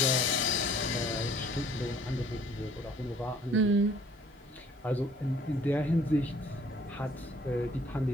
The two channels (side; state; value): both; normal; correlation 0.57